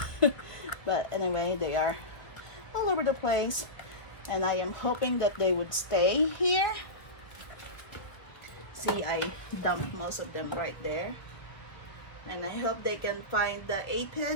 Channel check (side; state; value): right; late; 1.1 ms